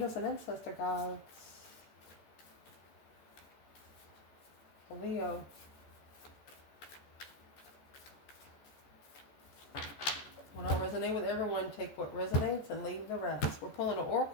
and ancestor gods. For Leo. Will not resonate with everyone. Take what resonates and leave the rest. We're pulling an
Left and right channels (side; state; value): right; late; 14 ms